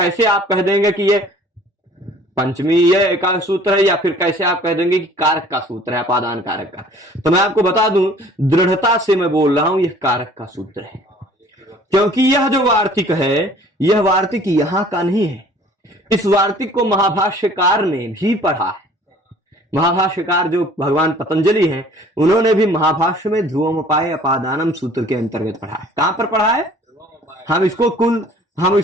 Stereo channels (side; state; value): both; normal; correlation 0.52